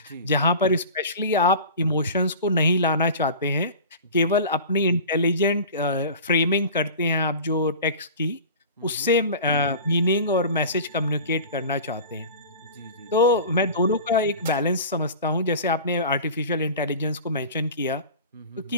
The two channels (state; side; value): inverted; both; correlation -0.36